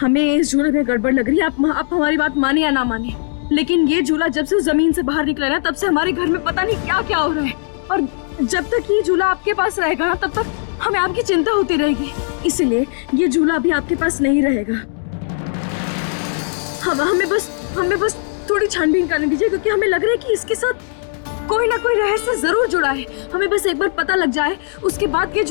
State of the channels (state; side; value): silent; right; digital silence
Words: हमें इस झूले में गड़बड़ लग रही है। आप हमारी बात माने या ना माने, लेकिन ये झूला जब से जमीन से बाहर निकला ना, तब से हमारे घर में पता नहीं क्या क्या हो रहा है। और जब तक ये झूला आपके पास रहेगा ना, तब तक हमें आपकी चिंता होती रहेगी। इसलिए ये झूला अभी आपके पास नहीं रहेगा। हमें बस थोड़ी छानबीन करने दीजिए, क्योंकि हमें लग रहा है कि इसके साथ कोई ना कोई रहस्य जरूर जुड़ा है। हमें बस एक बार पता लग जाए, उसके बाद ये